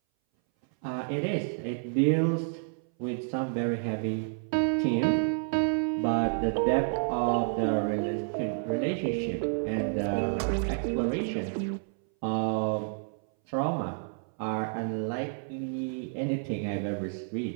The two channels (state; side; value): silent; left; 58 dB below the other